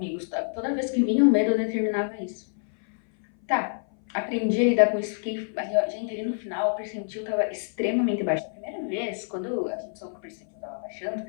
sabe? Toda vez que vinha o medo, eu determinava isso. Tá, aprendi a lidar com isso, fiquei. Gente, ali no final, o percentil tava extremamente baixo. A primeira vez, quando a gente soube que o percentil tava baixando,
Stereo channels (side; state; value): right; silent; 58 dB below the other